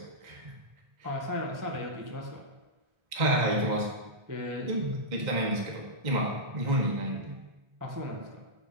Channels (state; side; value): late; left; 1.3 ms